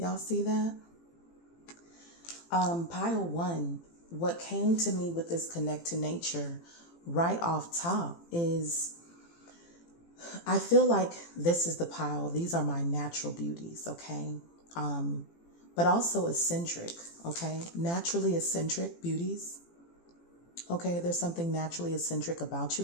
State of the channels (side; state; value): right; late; 18 ms